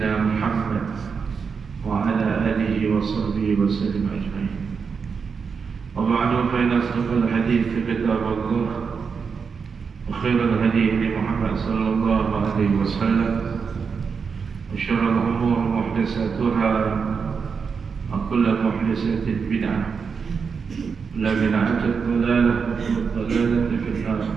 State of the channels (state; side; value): quieter; left; 5.7 dB